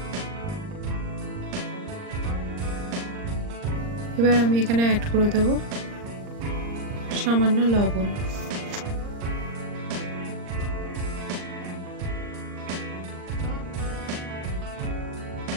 এবার আমি এখানে অ্যাড করে দেব সামান্য লবণ।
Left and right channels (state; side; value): late; left; 39 ms